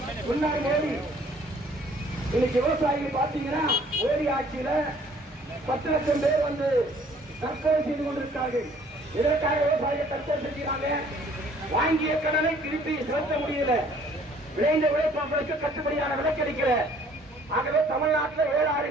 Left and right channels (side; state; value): both; normal; correlation 0.57